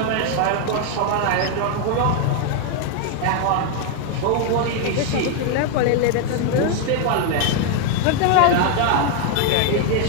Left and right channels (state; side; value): different; both; correlation 0.00